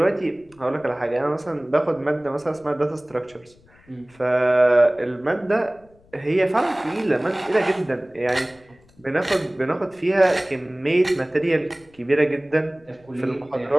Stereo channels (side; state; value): left; noise; rumble, 29 dB below the sound